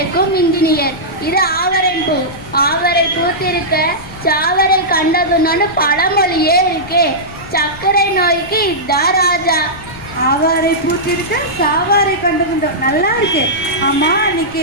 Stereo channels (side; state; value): left; noise; rumble, 18 dB below the sound